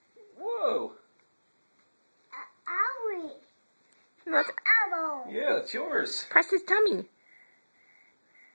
Whoa. Owie. Let's Owl. Yeah, it's yours. press his tummy.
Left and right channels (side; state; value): both; inverted; correlation -1.00